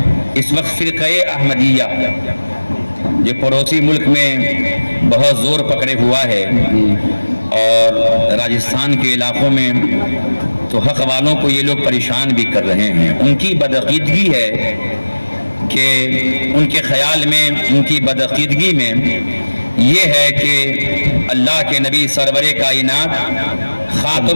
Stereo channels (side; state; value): both; inverted; correlation -1.00